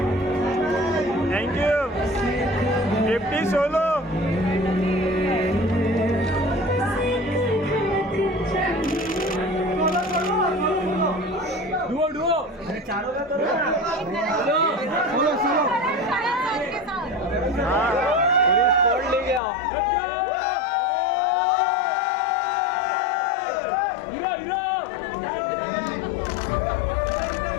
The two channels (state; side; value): drops out; right; at 19.4 s